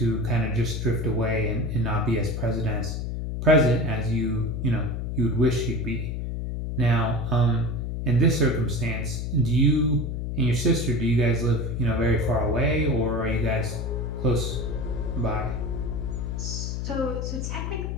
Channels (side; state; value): left; noise; hum, 3 dB below the sound